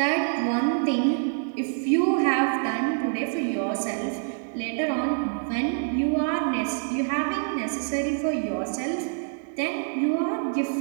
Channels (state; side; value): silent; left; digital silence